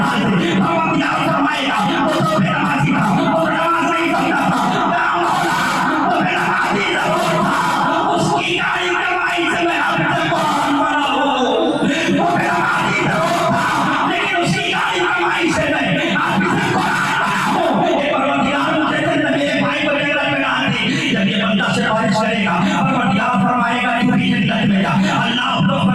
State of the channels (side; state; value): right; noise; rumble, 25 dB below the sound